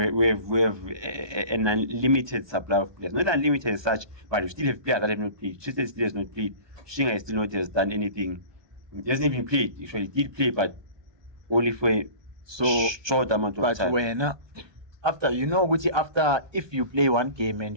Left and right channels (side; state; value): left; late; 1.2 ms